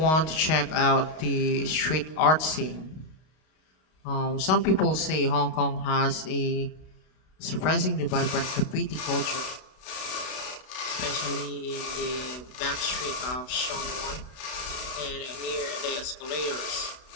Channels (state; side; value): late; right; 32 ms